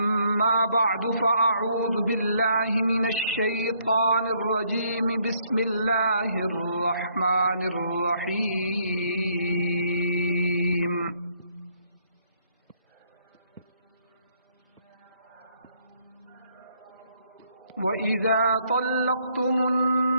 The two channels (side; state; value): both; inverted; correlation -0.68